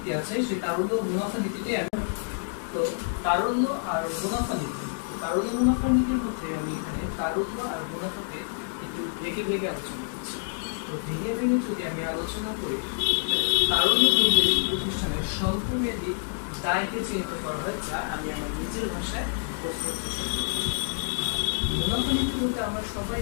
আছে, সেই তারল্য মুনাফা নীতিটি তো তারল্য আর মুনাফা নীতি, তারল্য মুনাফা নীতির মধ্যে আমি এখানে তারল্য আর মুনাফাকে একটু ভেঙে ভেঙে আলোচনা করছি। তো ভেঙে ভেঙে যদি আমি আলোচনা করি, তারল্য প্রতিষ্ঠানের স্বল্পমেয়াদী দায়কে চিহ্নিত করা হয় যা আমি আমার নিজের ভাষায় প্রস্তুত চেষ্টা করছি। মুনাফা নীতি বলতে আমরা সবাই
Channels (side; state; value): right; silent; digital silence